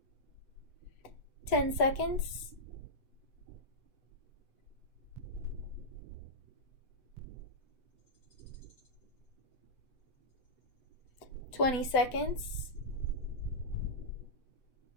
Ten seconds. 20 seconds.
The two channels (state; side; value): late; right; 7.9 ms